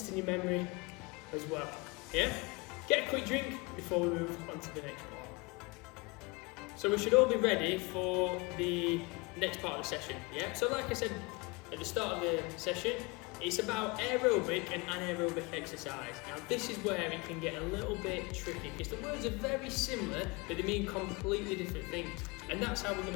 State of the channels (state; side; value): quieter; right; 27.1 dB